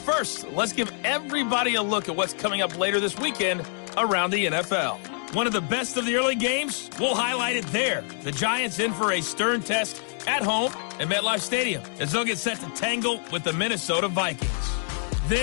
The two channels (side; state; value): right; silent; 61 dB below the other